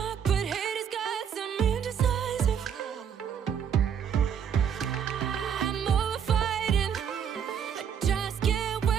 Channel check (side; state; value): left; quieter; 7.9 dB